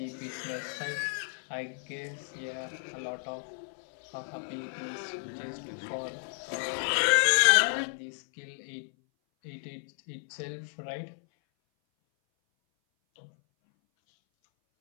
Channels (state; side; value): silent; right; 56 dB below the other